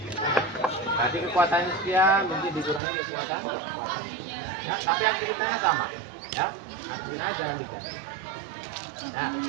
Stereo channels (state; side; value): drops out; left; at 2.8 s